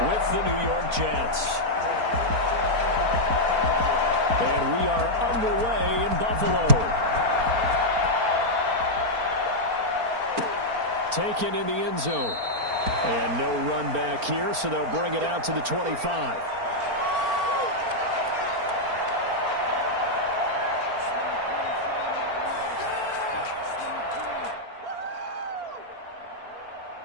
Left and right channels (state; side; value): late; left; 4.4 ms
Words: with the New York Jets. And we are underway in Buffalo. Taken in the end zone. And no run back here, so they'll bring it out to the 25.